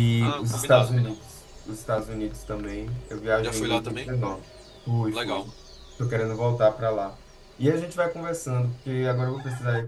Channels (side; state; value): both; identical; correlation 1.00